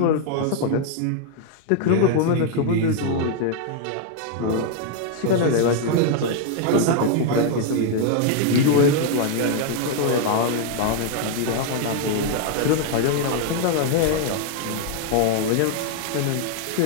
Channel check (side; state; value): both; different; correlation 0.00